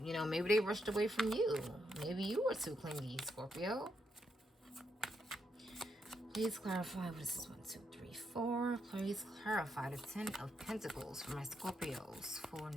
You know, maybe they rushed away from you. Maybe you were too clingy, Scorpio. Please clarify what this is. 1, 2, 3, 4. Please clarify the 10 of Pentacles for my Scorpios for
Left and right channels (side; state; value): both; normal; correlation 0.80